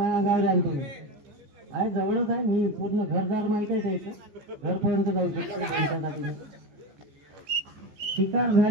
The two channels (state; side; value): late; left; 14 ms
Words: अंगावर आण तुम्ही. आहे जवळच आहे, मी पूर्ण घरदार माहित आहे त्याचं, घरपर्यंत जाऊ शकतो त्यांच्यासाठी. शिकार